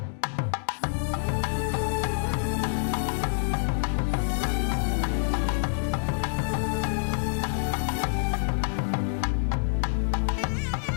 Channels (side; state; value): right; silent; digital silence